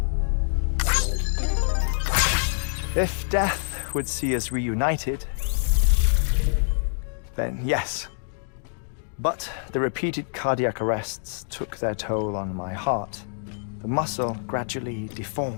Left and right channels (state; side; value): silent; right; digital silence